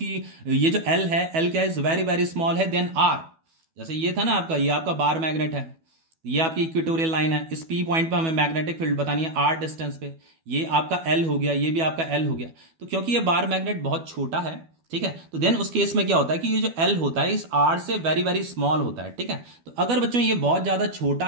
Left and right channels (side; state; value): left; late; 12 ms